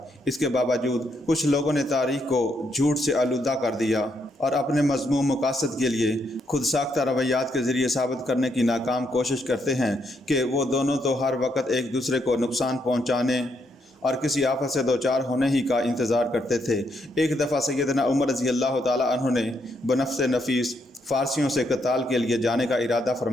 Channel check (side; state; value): both; normal; correlation 0.76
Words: اس کے باوجود کچھ لوگوں نے تاریخ کو جھوٹ سے آلودہ کر دیا اور اپنے مذموم مقاصد کے لیے خود ساختہ رویات کے ذریعے ثابت کرنے کی ناکام کوشش کرتے ہیں کہ وہ دونوں تو ہر وقت ایک دوسرے کو نقصان پہنچانے اور کسی آفت سے دوچار ہونے ہی کا انتظار کرتے تھے۔ ایک دفعہ سیدنا عمر رضی اللہ تعالیٰ عنہ نے بنفس نفیس فارسیوں سے قتال کے لیے جانے کا ارادہ